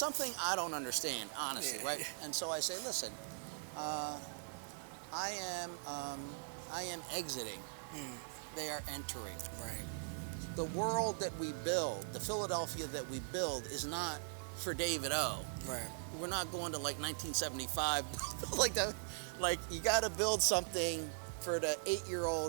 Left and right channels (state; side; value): silent; left; digital silence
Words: I don't understand, honestly, right? And so I say, listen, I am exiting. They are entering. Right. The world that we build, the Philadelphia that we build, is not for David O. Right. We're not going to 1975 like you got to build something for the